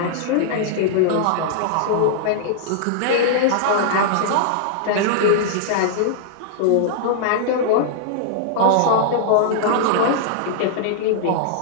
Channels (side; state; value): both; different; correlation -0.01